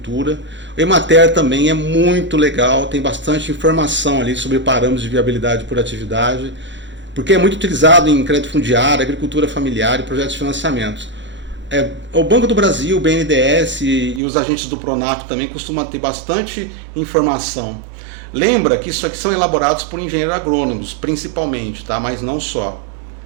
O Emater também é muito legal, tem bastante informação ali sobre parâmetros de viabilidade por atividade, porque é muito utilizado em crédito fundiário, agricultura familiar e projetos de financiamento. O Banco do Brasil, o BNDES e os agentes do Pronaf também costumam ter bastante informação. Lembra que isso aqui são elaborados por engenheiros agrônomos, principalmente, tá? Mas não só.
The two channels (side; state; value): left; drops out; at 14.2 s